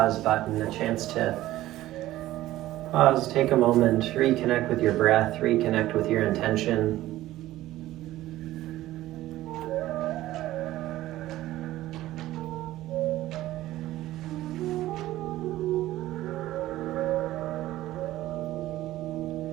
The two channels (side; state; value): left; quieter; 15.4 dB